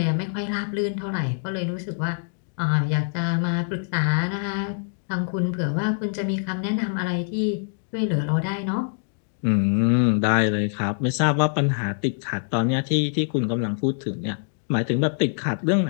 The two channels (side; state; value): right; silent; digital silence